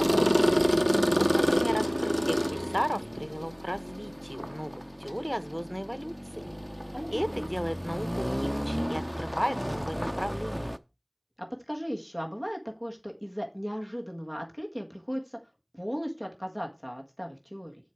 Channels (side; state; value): both; identical; correlation 1.00